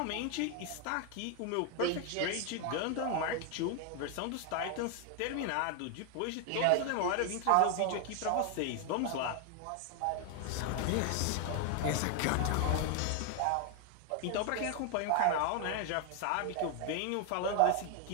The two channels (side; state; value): both; different; correlation 0.00